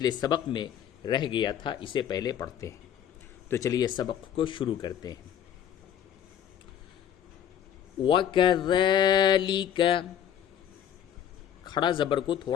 سبق میں رہ گیا تھا، اسے پہلے پڑھتے ہیں۔ تو چلیے سبق کو شروع کرتے ہیں۔ وَكَذَلِكَ، کھڑا زبر کو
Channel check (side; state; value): right; quieter; 9.7 dB